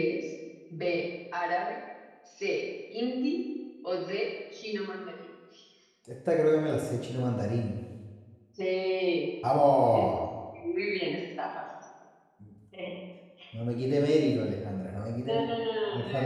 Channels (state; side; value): identical; both; correlation 1.00